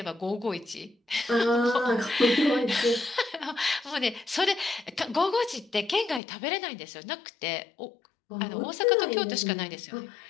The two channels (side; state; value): right; drops out; at 6.2 s